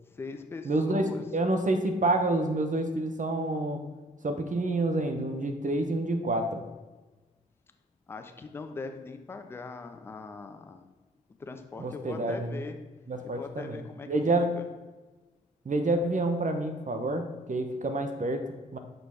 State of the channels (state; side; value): normal; both; correlation 0.54